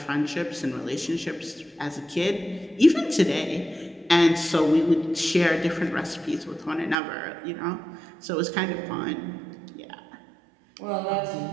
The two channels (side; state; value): left; drops out; at 7.0 s